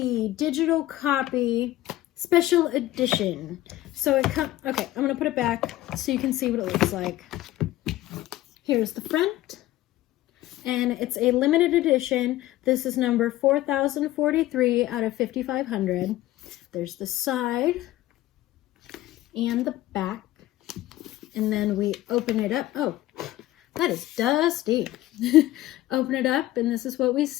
digital copy, special edition. So it comes, okay, I'm gonna put it back so you can see what it looks like. Here's the front, and it's a limited edition. This is number 4043 out of 5500. There's the side and the back, and then we open it up. Oh, that is dusty. Open it up, and this is what we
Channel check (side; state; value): right; quieter; 15.6 dB